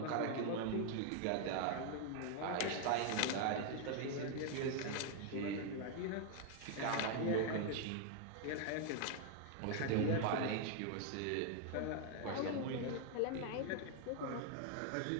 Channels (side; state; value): both; different; correlation 0.00